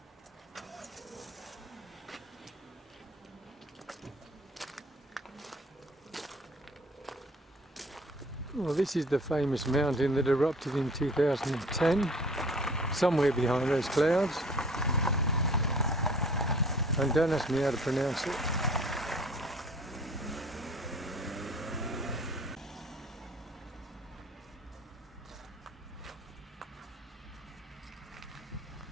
Well, this is the famous mountain that erupted in 2010, somewhere behind those clouds. And don't ask me how to pronounce it.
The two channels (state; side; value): normal; both; correlation 0.51